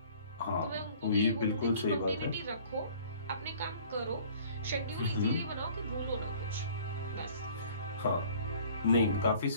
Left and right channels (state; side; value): inverted; both; correlation -0.52